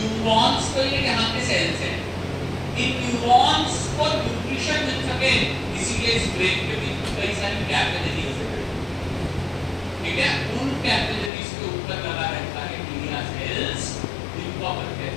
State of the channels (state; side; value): drops out; right; at 11.3 s